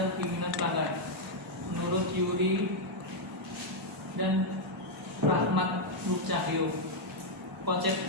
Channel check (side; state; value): both; normal; correlation -0.02